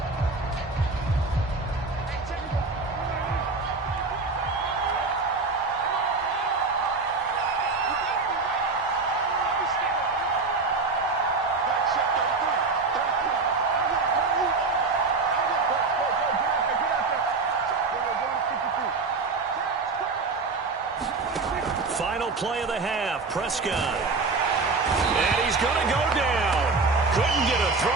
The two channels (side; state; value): left; quieter; 4.0 dB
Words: Final play of the half, Prescott. And he's going to go down. Couldn't get a